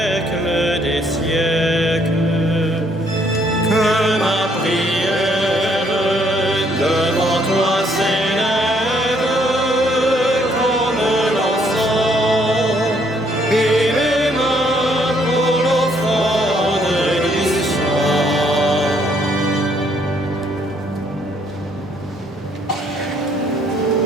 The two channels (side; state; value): both; normal; correlation 0.68